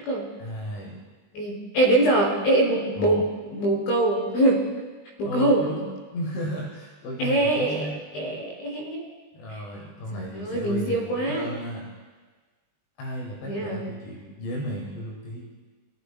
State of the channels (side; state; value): right; late; 20 ms